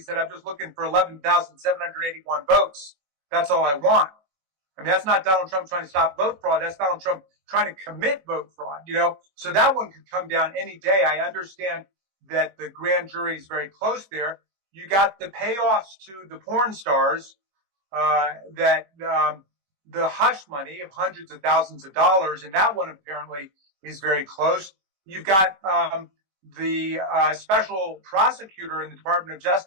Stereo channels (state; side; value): late; left; 21 ms